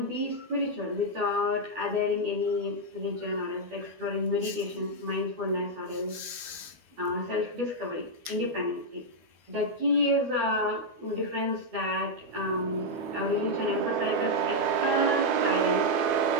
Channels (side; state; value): left; late; 12 ms